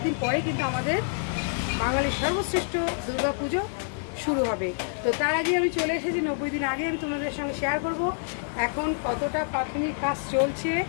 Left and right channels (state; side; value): silent; right; 58 dB below the other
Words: দিন পরে কিন্তু আমাদের বাঙালির সর্বশ্রেষ্ঠ দুর্গা পুজো শুরু হবে। তো তার আগে আমি চলে এসেছি, 90 দিন আগে আমি তোমাদের সঙ্গে শেয়ার করব এখন কতটা প্রাথমিক কাজ চলছে